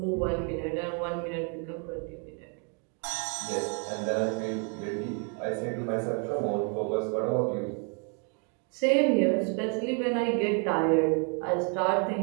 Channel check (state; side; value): quieter; left; 38.6 dB